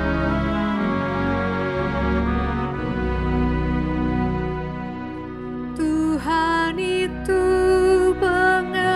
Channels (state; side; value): identical; both; correlation 1.00